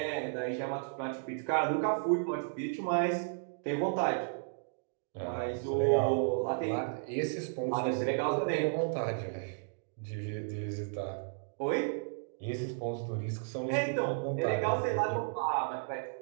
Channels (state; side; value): silent; left; digital silence